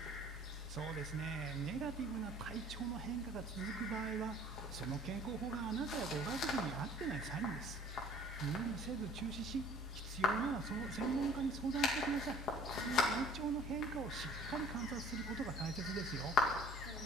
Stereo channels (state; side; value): normal; both; correlation 0.50